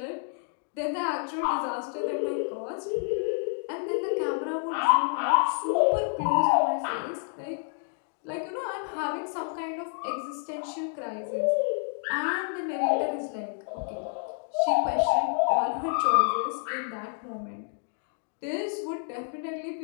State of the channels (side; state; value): right; silent; 59 dB below the other